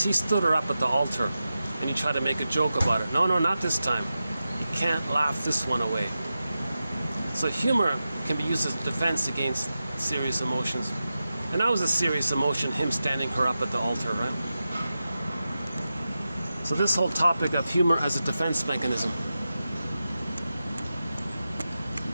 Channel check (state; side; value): inverted; both; correlation -0.92